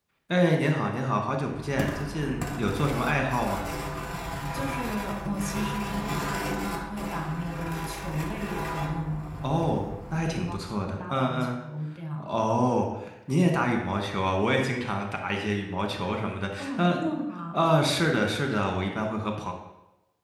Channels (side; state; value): both; identical; correlation 1.00